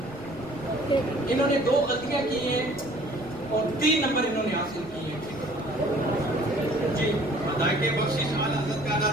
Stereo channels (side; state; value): left; noise; rumble, 20 dB below the sound